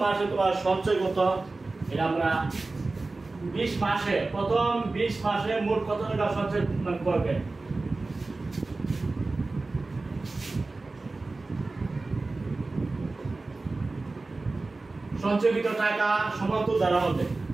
মাসে তোমার সঞ্চয় কত, এটা আমরা 20 মাসে প্রথম 20 মাসে মোট কত টাকা সঞ্চয় করবে। সঞ্চয়কৃত টাকা সমান্তর দ্বারা হবে,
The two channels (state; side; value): quieter; left; 3.4 dB